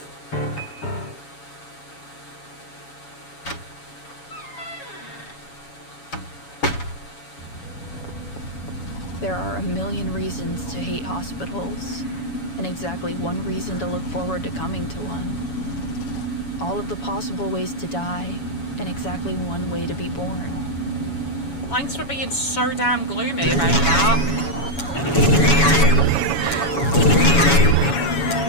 There are a million reasons to hate hospitals, and exactly one reason to look forward to coming to one. All of the possible ways to die, and exactly one way to be born. Thanks for being so damn gloomy about that.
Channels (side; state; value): right; late; 7.1 ms